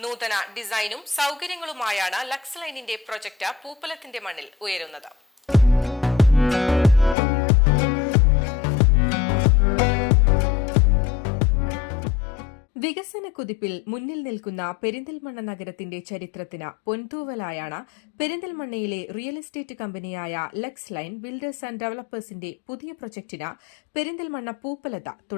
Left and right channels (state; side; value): drops out; right; at 7.2 s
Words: നൂതന ഡിസൈനും സൗകര്യങ്ങളുമായാണ് ലക്സ് ലൈനിന്റെ പ്രൊജക്ട് പൂപ്പലത്തിന്റെ മണ്ണിൽ ഉയരുന്നത്. വികസന കുതിപ്പിൽ മുന്നിൽ നിൽക്കുന്ന പെരിന്തൽമണ്ണ നഗരത്തിന്റെ ചരിത്രത്തിന് പൊൻതൂവലായാണ് പെരിന്തൽമണ്ണയിലെ റിയൽ എസ്റ്റേറ്റ് കമ്പനിയായ ലക്സ് ലൈൻ ബിൽഡേഴ്സ് ആൻഡ് ഡെവലപ്പേഴ്സിന്റെ പുതിയ പ്രൊജക്ടിന് പെരിന്തൽമണ്ണ പൂപ്പലത്ത്